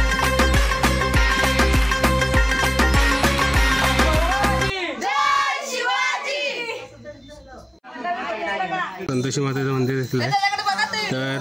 संतोषी मातेचं मंदिर देखील आहे.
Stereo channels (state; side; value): identical; both; correlation 1.00